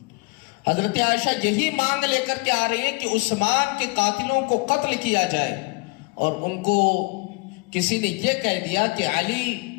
حضرت عائشہ یہی مانگ لے کر کے آ رہی ہے کہ عثمان کے قاتلوں کو قتل کیا جائے، اور ان کو کسی نے یہ کہہ دیا کہ علی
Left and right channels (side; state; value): right; quieter; 28.3 dB